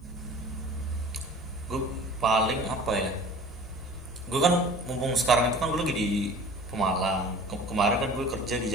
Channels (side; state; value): both; normal; correlation 0.43